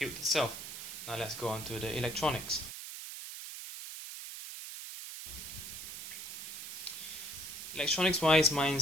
itself. Now let's go on to the electronics. Electronics wise,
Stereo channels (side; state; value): right; noise; hiss, 8 dB below the sound